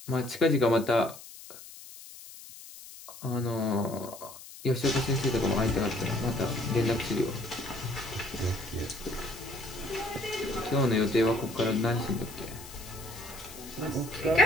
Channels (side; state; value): left; noise; hiss, 16 dB below the sound